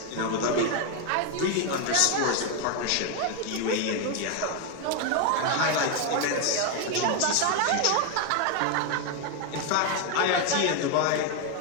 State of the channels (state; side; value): different; both; correlation 0.01